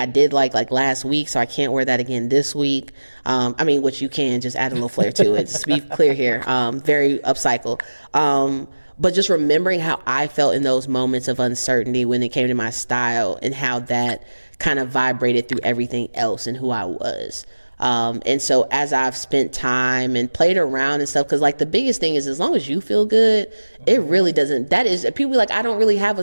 did like last week, so I can't wear that again this week. Which you can, just add a little flair to it. Just to be clear here, very upcycle. But just remembering how I felt in those moments of uncertainty when it came to my style, and how that kind of vibrated through everything else and who I was. And so as I've spent time and played around and stuff, because like the biggest thing is, as long as you feel good, it really doesn't. That is, people be like, I don't really have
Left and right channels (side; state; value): both; inverted; correlation -1.00